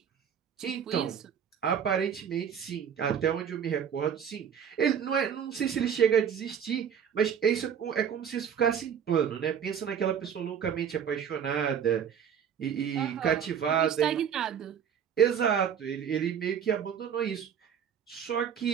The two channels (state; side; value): quieter; left; 8.1 dB